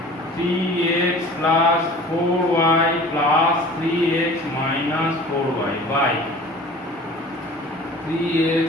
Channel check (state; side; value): normal; both; correlation 0.44